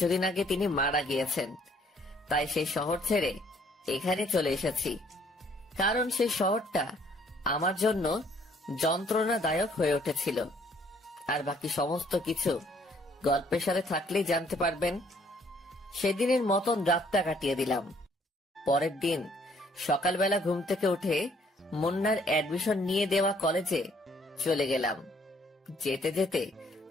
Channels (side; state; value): both; normal; correlation 0.63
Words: আগে তিনি মারা গিয়েছেন। তাই সেই শহর ছেড়ে এখানে চলে এসেছি, কারণ সেই শহরটা আমার জন্য যন্ত্রণাদায়ক হয়ে উঠেছিল। আর বাকি সমস্ত কিছু গল্পের সাথে থাকলেই জানতে পারবেন। সেদিনের মতন রাতটা কাটিয়ে দিলাম। পরের দিন সকালবেলা ঘুম থেকে উঠে মুন্নার অ্যাডমিশন নিয়ে দেওয়া কলেজে চলে গেলাম। যেতে যেতে